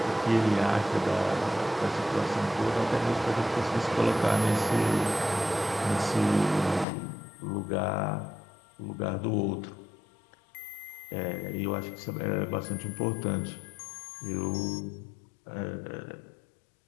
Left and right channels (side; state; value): right; drops out; at 6.9 s